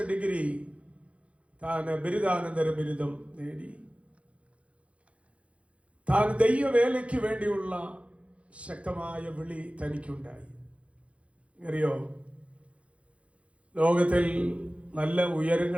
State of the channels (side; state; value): left; late; 0.062 ms